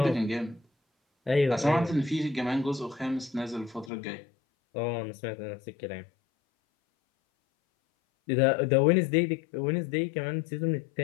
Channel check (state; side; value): drops out; right; at 3.9 s